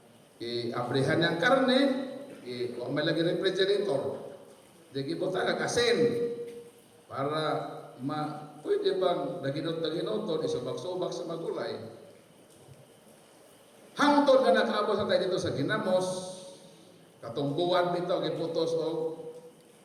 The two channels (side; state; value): both; identical; correlation 1.00